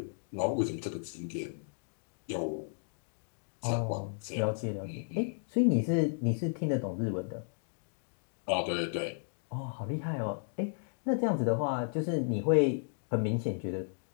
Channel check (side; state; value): right; silent; digital silence